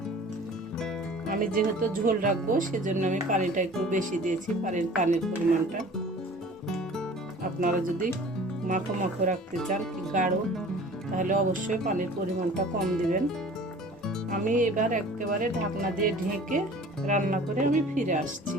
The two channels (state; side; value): normal; both; correlation 0.45